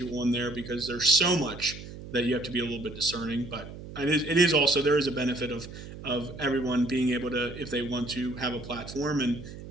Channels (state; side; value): noise; right; hum, 13 dB below the sound